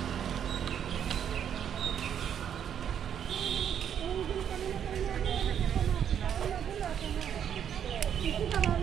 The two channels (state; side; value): quieter; left; 8.9 dB